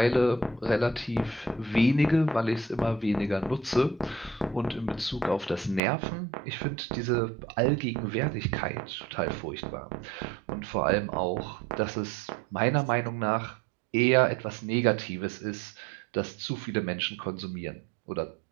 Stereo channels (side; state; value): left; drops out; at 5.8 s